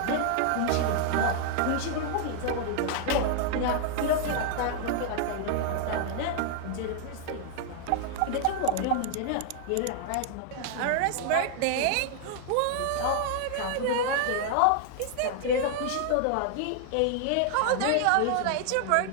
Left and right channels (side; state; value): both; different; correlation 0.00